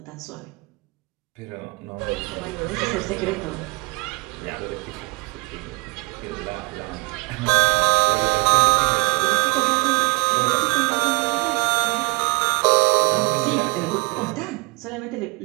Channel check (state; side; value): quieter; left; 26.8 dB